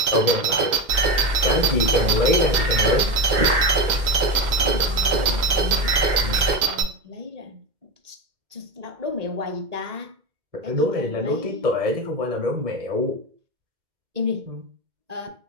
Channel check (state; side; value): late; left; 2.1 ms